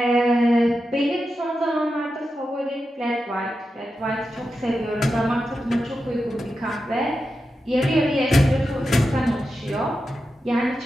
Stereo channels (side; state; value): both; normal; correlation 0.90